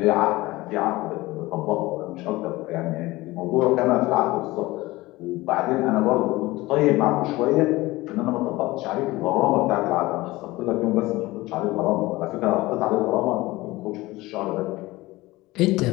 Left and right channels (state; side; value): quieter; right; 19.7 dB